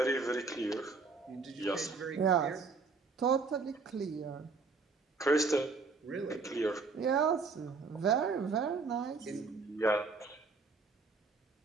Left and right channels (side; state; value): left; quieter; 4.3 dB